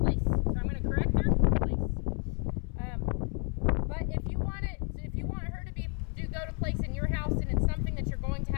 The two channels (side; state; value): right; quieter; 39.9 dB